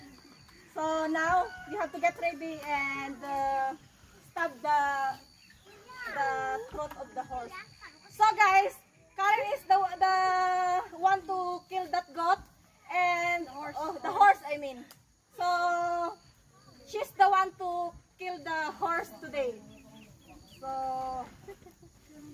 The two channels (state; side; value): identical; both; correlation 1.00